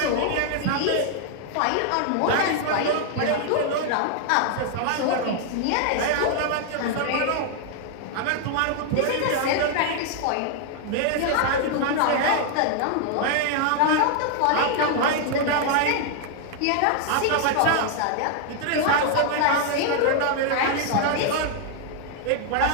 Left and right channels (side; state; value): both; different; correlation 0.00